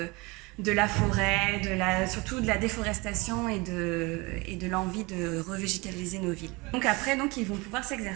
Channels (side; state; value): left; quieter; 25.2 dB